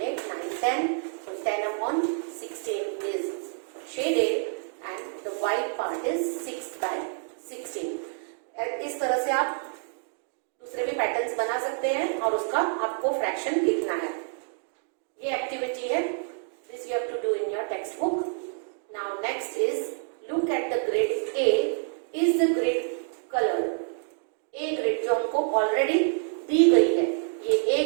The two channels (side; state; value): left; silent; 59 dB below the other